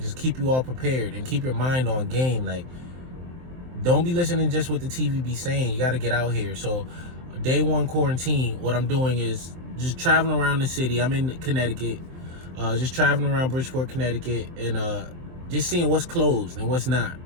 keep you all prepared and keep your mind on game. Like, don't be listening just what the TV be saying. You got to get out here. So day 1 quarantine, what I'm doing is just traveling around the city. I'm in Connecticut, just traveling around Bridgeport, Connecticut, and just seeing what's closed and what's not,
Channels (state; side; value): late; left; 23 ms